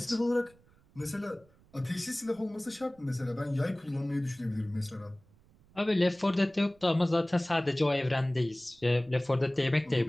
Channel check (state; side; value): noise; right; rumble, 29 dB below the sound